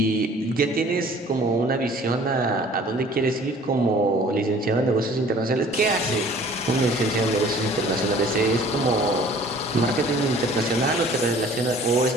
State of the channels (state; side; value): normal; both; correlation 0.51